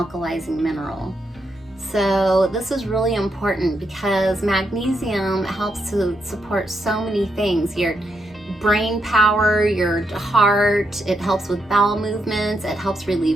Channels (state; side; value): normal; both; correlation 0.81